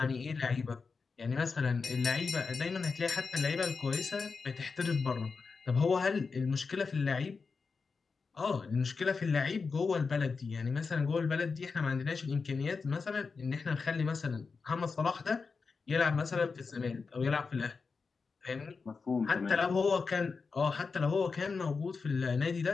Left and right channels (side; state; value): right; quieter; 4.8 dB